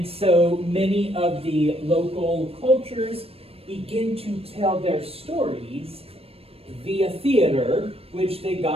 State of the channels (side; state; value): left; late; 0.28 ms